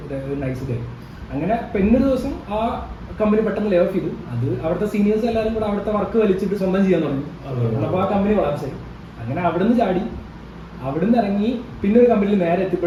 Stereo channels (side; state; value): both; identical; correlation 1.00